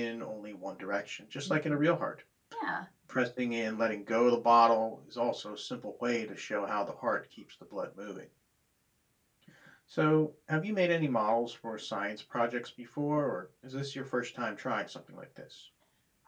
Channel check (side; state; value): both; identical; correlation 1.00